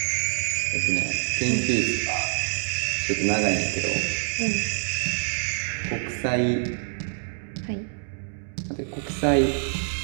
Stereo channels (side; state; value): left; silent; digital silence